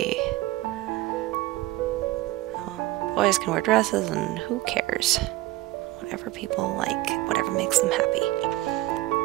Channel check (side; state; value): left; quieter; 17.8 dB